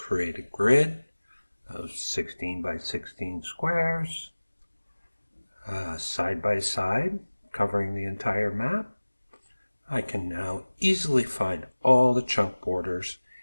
a grid of 16 by 16 squares, side by side, covering the entire map. I can now easily find all the chunk borders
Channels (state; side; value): inverted; both; correlation -1.00